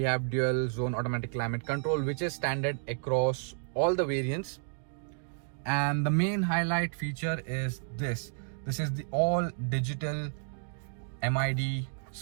have dual zone automatic climate control, which is standard across all the variants. And the main highlight feature is this. This is the all digital MID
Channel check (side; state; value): left; silent; 57 dB below the other